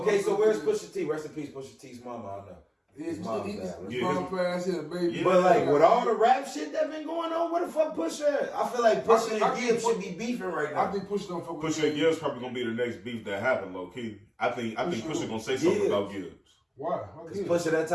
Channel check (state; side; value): identical; both; correlation 1.00